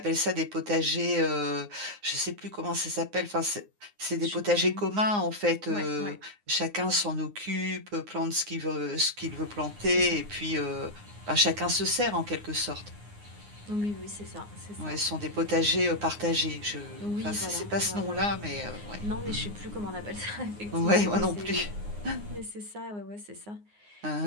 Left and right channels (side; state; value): left; late; 9.7 ms